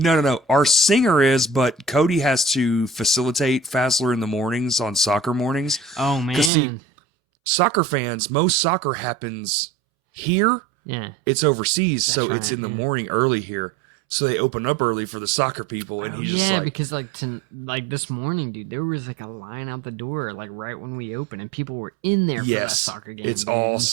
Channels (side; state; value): left; drops out; at 6.5 s